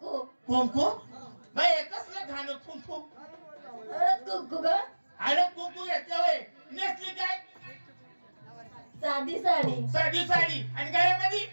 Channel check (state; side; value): inverted; both; correlation -1.00